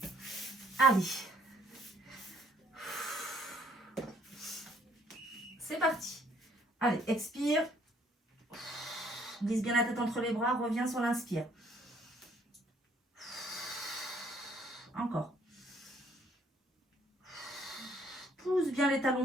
Allez. C'est parti. Allez, expire. Glisse bien la tête entre les bras, reviens sur l'inspire. Encore. Pousse bien les talons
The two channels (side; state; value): both; normal; correlation 0.63